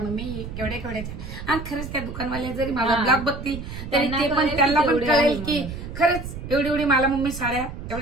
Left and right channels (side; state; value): right; noise; rumble, 9 dB below the sound